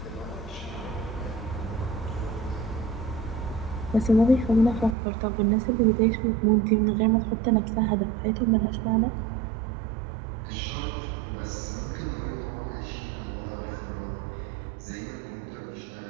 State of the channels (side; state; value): left; drops out; at 5.0 s